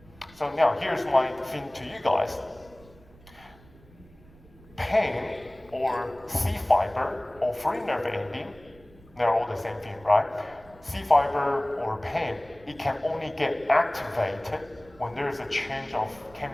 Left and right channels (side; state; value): right; noise; rumble, 25 dB below the sound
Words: So now here's my thing to you guys. Pain or C fiber or free nerve ending, they're all the same thing, right? C fiber or pain, it can only get activated when there's a change of